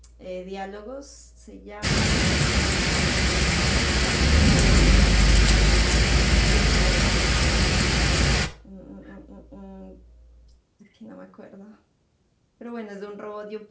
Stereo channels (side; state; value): both; identical; correlation 1.00